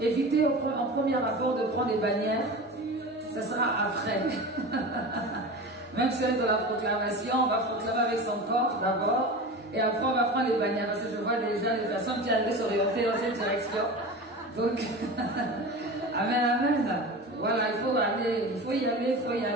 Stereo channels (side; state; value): both; normal; correlation 0.31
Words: éviter en premier rapport de prendre des bannières. Ça sera après. Même si on est dans la proclamation, on va proclamer avec son corps d'abord et après on va prendre les bannières parce que je vois déjà les personnes qui allaient s'orienter dans cette direction. Donc, amen, amen. Voilà, il faut aller, il faut y aller,